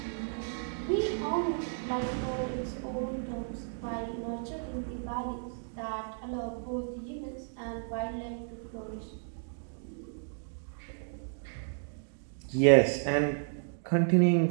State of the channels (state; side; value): silent; left; digital silence